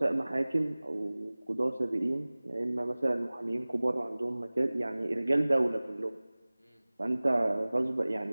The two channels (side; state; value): both; inverted; correlation -0.99